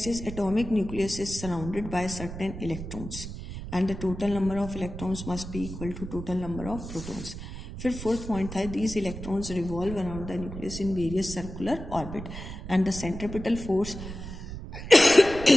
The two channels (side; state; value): right; noise; rumble, 10 dB below the sound